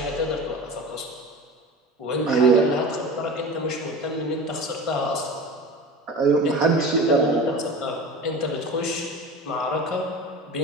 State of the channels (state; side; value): normal; both; correlation 0.34